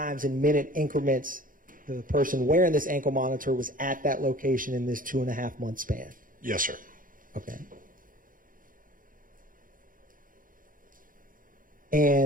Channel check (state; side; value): late; left; 0.40 ms